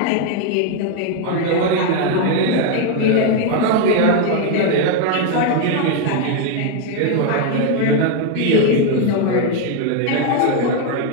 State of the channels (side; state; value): both; different; correlation 0.01